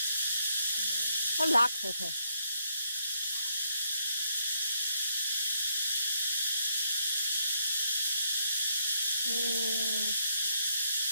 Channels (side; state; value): both; inverted; correlation -0.73